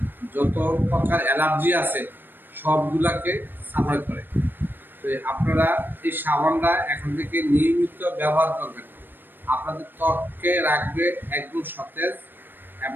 যত প্রকার অ্যালার্জি আছে সবগুলাকে সাফাই করে। তো আপনারা এই সাবানটা এখন থেকে নিয়মিত ব্যবহার করবেন। আপনাদের ত্বককে রাখবে একদম সতেজ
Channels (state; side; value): late; left; 0.094 ms